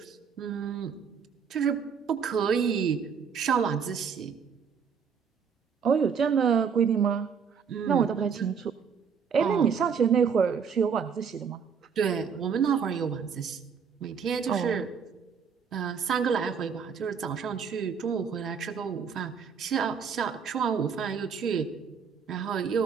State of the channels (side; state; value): left; quieter; 6.6 dB